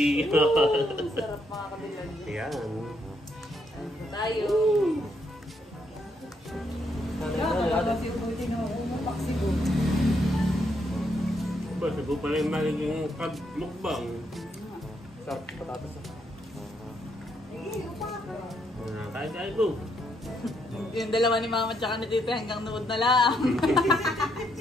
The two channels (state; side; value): normal; both; correlation 0.75